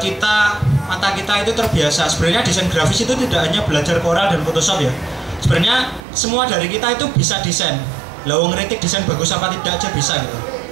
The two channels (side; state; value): left; drops out; at 6.0 s